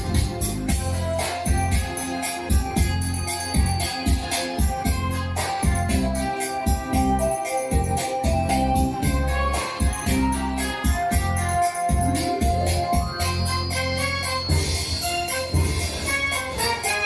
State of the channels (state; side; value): identical; both; correlation 1.00